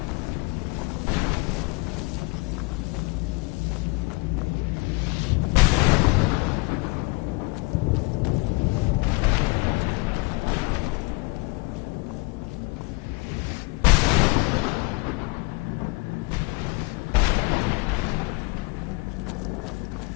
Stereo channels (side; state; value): right; quieter; 26.1 dB